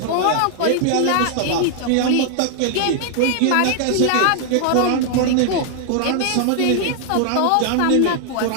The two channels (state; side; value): different; both; correlation 0.00